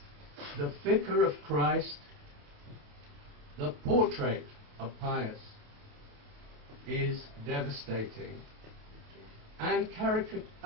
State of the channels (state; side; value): late; left; 28 ms